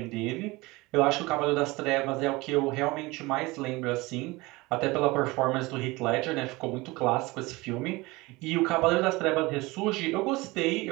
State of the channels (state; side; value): quieter; left; 22.3 dB